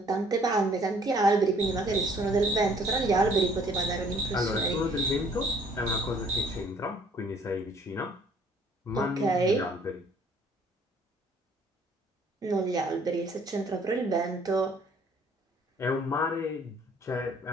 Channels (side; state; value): both; normal; correlation 0.60